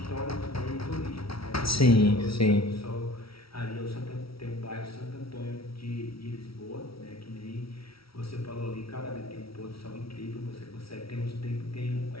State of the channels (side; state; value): right; late; 0.75 ms